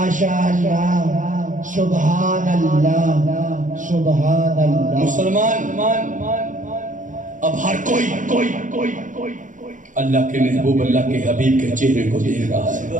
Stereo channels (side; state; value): left; late; 0.37 ms